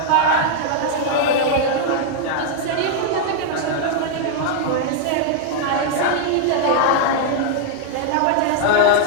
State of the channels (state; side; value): different; both; correlation -0.01